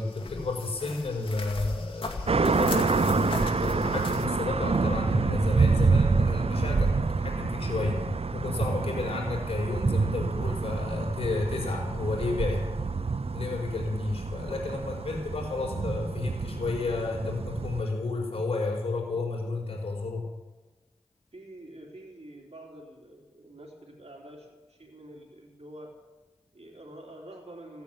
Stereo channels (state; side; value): normal; both; correlation 0.74